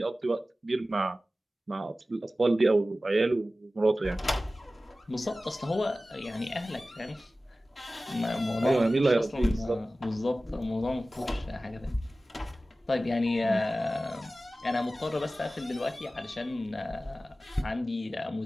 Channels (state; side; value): normal; both; correlation 0.96